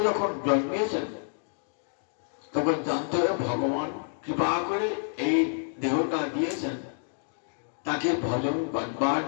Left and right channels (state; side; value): silent; right; digital silence